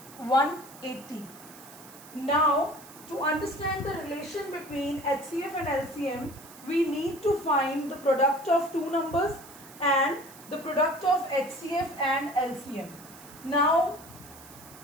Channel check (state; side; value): noise; right; hiss, 19 dB below the sound